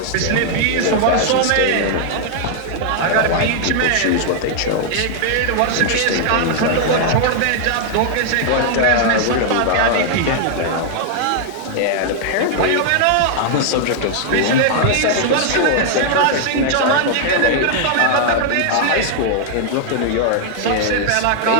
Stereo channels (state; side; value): different; both; correlation 0.00